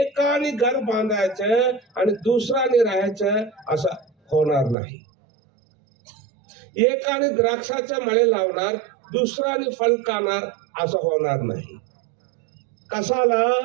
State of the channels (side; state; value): left; drops out; at 4.8 s